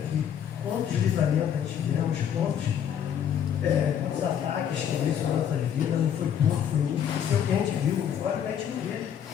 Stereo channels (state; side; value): quieter; right; 8.9 dB